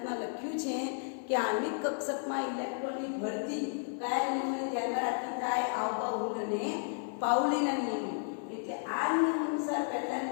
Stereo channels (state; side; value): silent; right; 56 dB below the other